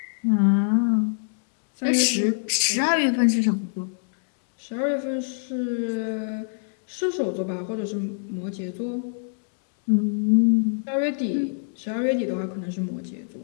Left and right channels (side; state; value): right; silent; digital silence